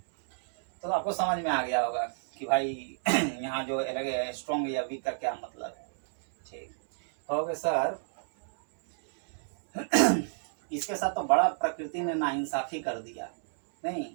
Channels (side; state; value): left; silent; digital silence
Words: तो आपको समझ में आ गया होगा कि भाई यहाँ जो स्ट्रॉन्ग या वीक का क्या मतलब है। ठीक हो गया सर। इसके साथ तो बड़ा प्रकृति ने नाइंसाफी कर दिया नहीं,